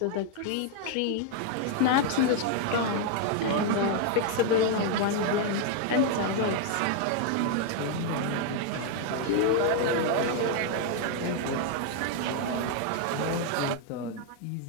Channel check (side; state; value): both; different; correlation 0.00